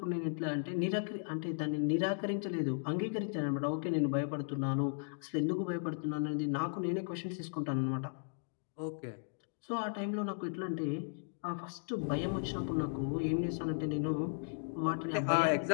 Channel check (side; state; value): right; silent; digital silence